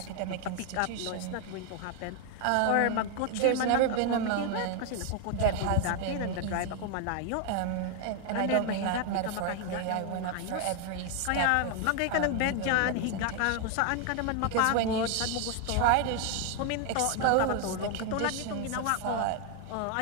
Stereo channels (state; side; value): different; both; correlation 0.00